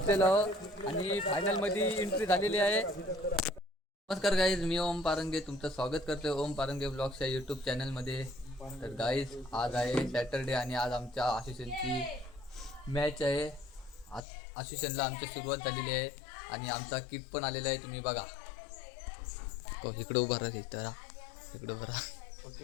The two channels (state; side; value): drops out; right; at 14.2 s